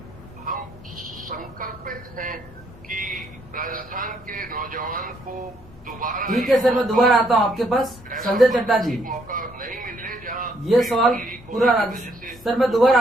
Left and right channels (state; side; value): noise; left; hum, 23 dB below the sound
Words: हम संकल्पित हैं कि राजस्थान के नौजवान को दोबारा। ठीक है सर, मैं दोबारा आता हूँ आपके पास। संजय चड्डा जी, मौका नहीं मिले जहाँ ये सवाल पूरा सर, मैं दोबारा